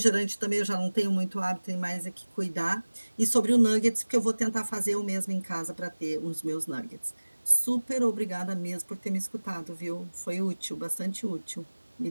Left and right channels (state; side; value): inverted; both; correlation -1.00